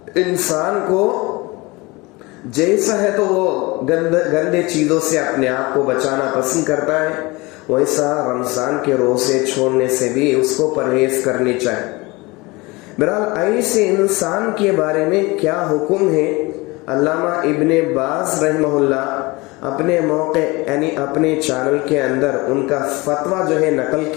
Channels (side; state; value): right; quieter; 23.7 dB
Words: انسان کو جیسا ہے تو وہ گندے چیزوں سے اپنے آپ کو بچانا پسند کرتا ہے، ویسا رمضان کے روزے چھوڑنے سے بھی اس کو پرہیز کرنی چاہیے۔ بہرحال ایسے انسان کے بارے میں کیا حکم ہے، علامہ ابن باز رحمہ اللہ اپنے موقع یعنی اپنے چینل کے اندر ان کا فتویٰ جو ہے نقل